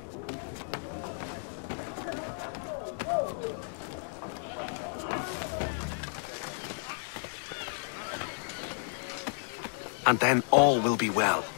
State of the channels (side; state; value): right; silent; digital silence